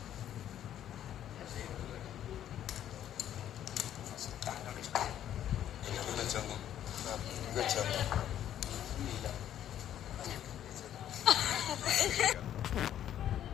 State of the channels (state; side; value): quieter; right; 10.9 dB